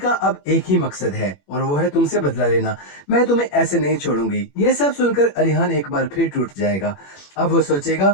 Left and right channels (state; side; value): late; right; 21 ms